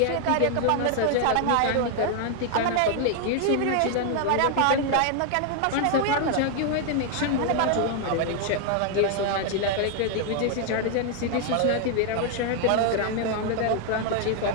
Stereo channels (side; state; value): both; different; correlation 0.00